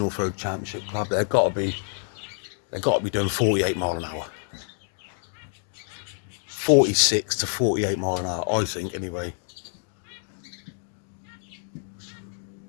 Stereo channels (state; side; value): silent; right; digital silence